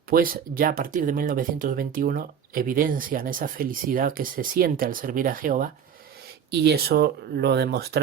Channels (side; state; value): left; quieter; 8.0 dB